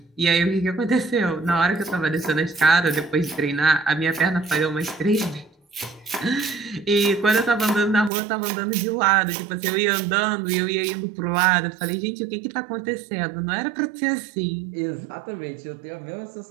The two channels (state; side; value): drops out; left; at 8.1 s